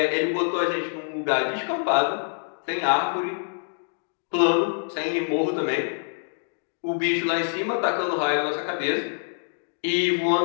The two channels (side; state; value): right; silent; digital silence